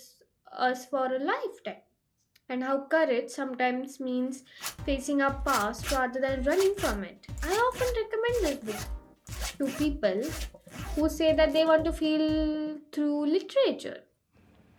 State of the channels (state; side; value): identical; both; correlation 1.00